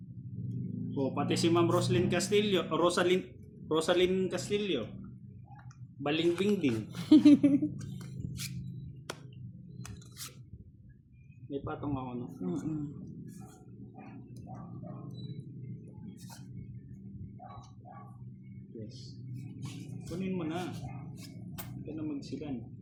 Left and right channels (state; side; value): identical; both; correlation 1.00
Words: O, pati si Ma'am Rosalyn Castillo. Balingbing din. May patong ako, no? Yes. Kunin mo na. Hindi ka na magsilan.